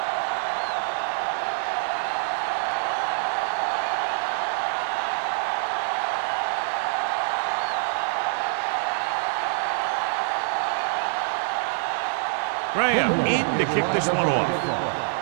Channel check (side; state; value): left; silent; digital silence